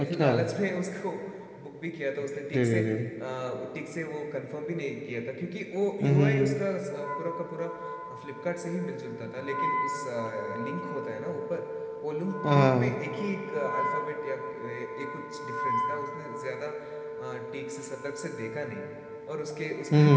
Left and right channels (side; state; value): both; identical; correlation 1.00